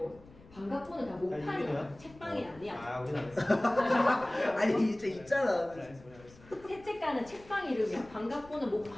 반갑본은 다 아, 이게 목판이야. 뭐야? 책방이 아니야. 아 우리는 안 했어. 아니 진짜 있잖아. 세책가는 책방 이름이야. 반갑본은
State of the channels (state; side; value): noise; left; rumble, 23 dB below the sound